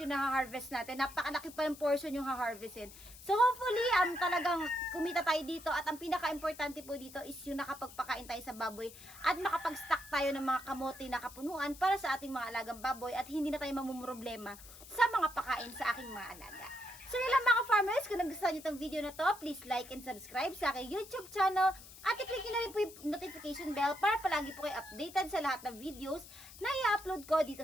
yung na-harvest natin. Napakalaki pa yung portion yung ha-harvestin. So hopefully talagang kumita tayo dito at ang pinaka-importante po dito is yung nakapagpakain tayo sa baboy at makapag-stock tayo ng mga kamote na kapunuan para sa ating mga alagang baboy at hindi na tayo mamumroblema sa mga pakain sa aking mga alaga. So yun lang mga farmers, kung nagustuhan nyo itong video na to, please like and subscribe sa aking YouTube channel at i-click nyo na rin po yung notification bell para palagi po kayo updated sa lahat ng videos na i-upload ko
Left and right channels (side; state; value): left; noise; hiss, 17 dB below the sound